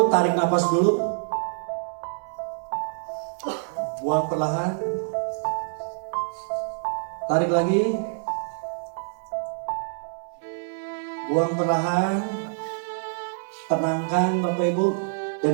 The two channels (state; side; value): silent; left; 58 dB below the other